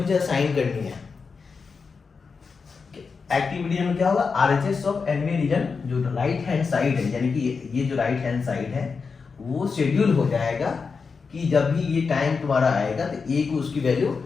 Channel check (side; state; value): right; quieter; 5.1 dB